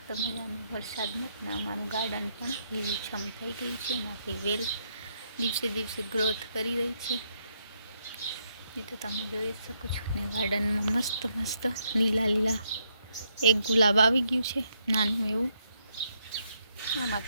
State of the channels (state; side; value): inverted; both; correlation -0.76